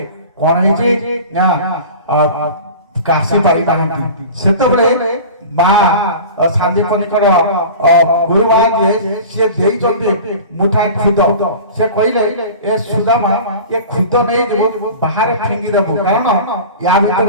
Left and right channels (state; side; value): inverted; both; correlation -0.36